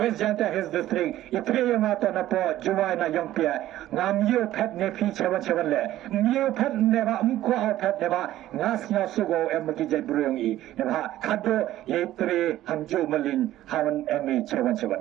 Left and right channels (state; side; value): quieter; left; 14.0 dB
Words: Janta his district. Itre yang ato na po juwai na yang pia. Nga miyo pet ne pi chewan le. Miyo pet neba mko au pet neba. Nga snya sugo emaki jay bruyong i. Neba kado ye tre hamju malin hawan emi chewan.